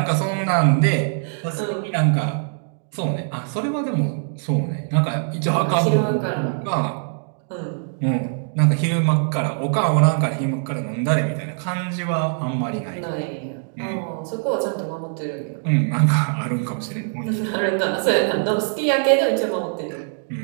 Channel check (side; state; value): left; silent; digital silence